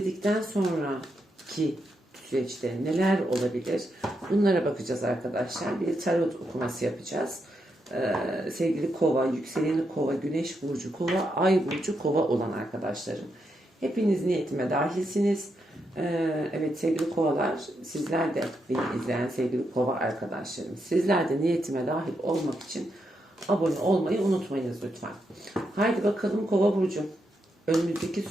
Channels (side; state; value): both; normal; correlation 0.82